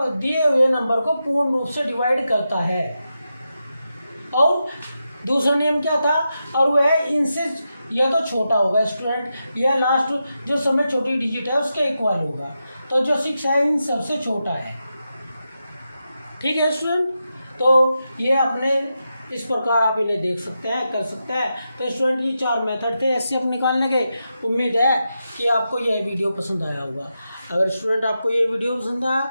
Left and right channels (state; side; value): inverted; both; correlation -0.88